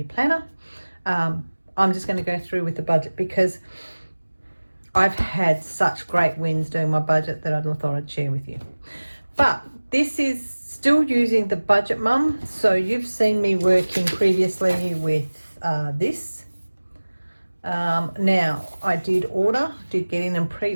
planner. I'm just going to go through with the budget because I've had such great wins doing my budget that I thought I'd share with you. But this is still using the Budget Mum. So you've seen me working previously with this. Now I did get in and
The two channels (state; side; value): inverted; both; correlation -1.00